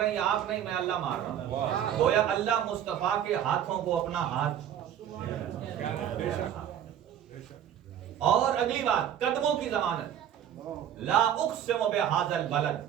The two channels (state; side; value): quieter; left; 10.0 dB